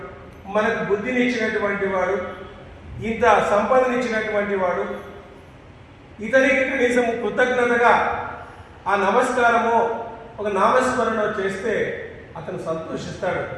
మనకు బుద్ధిని ఇచ్చినటువంటి వాడు, ఇంత సంపదనిచ్చినటువంటి వాడు, ఇతనికి కనీసం కృతజ్ఞతగా ఆ నమస్కారమో ఒక నామస్మరణ చేస్తే అతను సంతోషిస్తాడు.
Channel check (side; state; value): both; identical; correlation 1.00